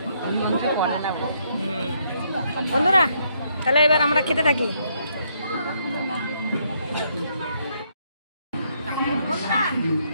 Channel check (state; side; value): inverted; both; correlation -0.73